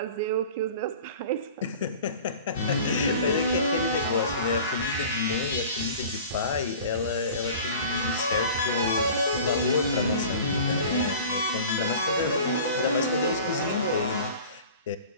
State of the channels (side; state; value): both; inverted; correlation -0.42